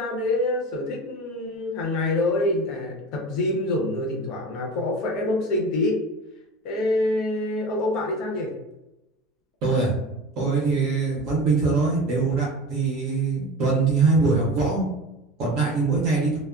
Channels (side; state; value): both; normal; correlation 0.33